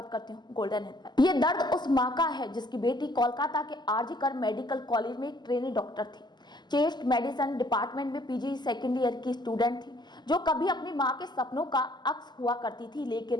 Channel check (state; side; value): late; right; 0.21 ms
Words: करती हूँ गोल्डन हिल पर। ये दर्द उस माँ का है जिसकी बेटी कोलकाता के आरजी कर मेडिकल कॉलेज में एक ट्रेनी डॉक्टर थी। चेस्ट मेडिसिन डिपार्टमेंट में पीजी सेकेंड ईयर की स्टूडेंट थी, जो कभी अपनी माँ के सपनों का अक्स हुआ करती थी,